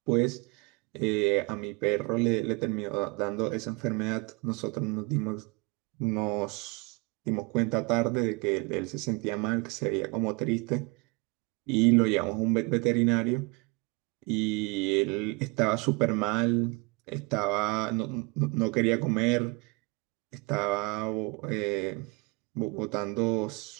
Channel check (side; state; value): left; quieter; 28.1 dB